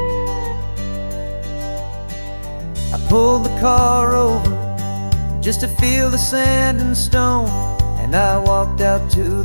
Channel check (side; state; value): both; inverted; correlation -1.00